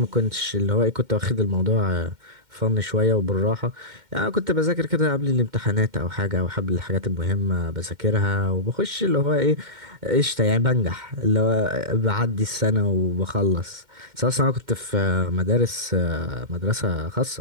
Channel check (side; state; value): left; late; 2.1 ms